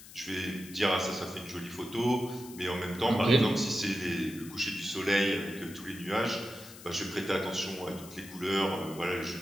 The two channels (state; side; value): noise; left; hiss, 17 dB below the sound